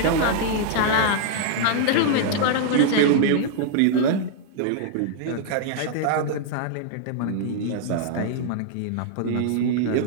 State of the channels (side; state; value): both; different; correlation -0.01